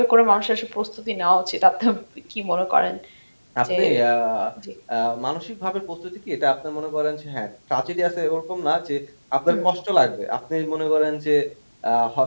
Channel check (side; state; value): both; inverted; correlation -1.00